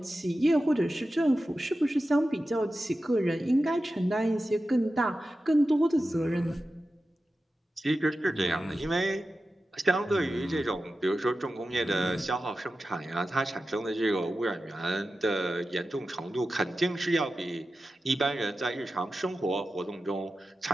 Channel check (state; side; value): normal; both; correlation 0.93